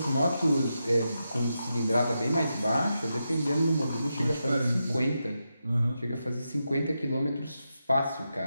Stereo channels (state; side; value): inverted; both; correlation -0.87